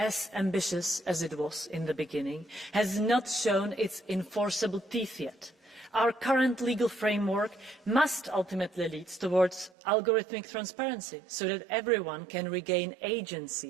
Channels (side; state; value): left; drops out; at 9.7 s